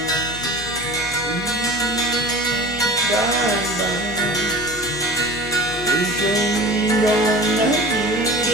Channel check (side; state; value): both; normal; correlation 0.37